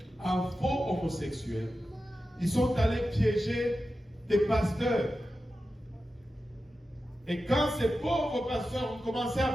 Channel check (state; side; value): normal; both; correlation 0.92